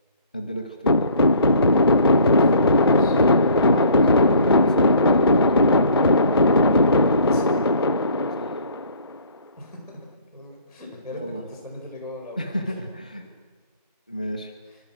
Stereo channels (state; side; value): inverted; both; correlation -0.54